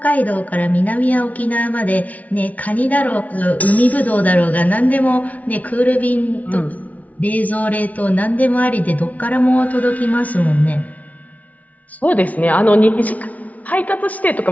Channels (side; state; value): right; late; 0.070 ms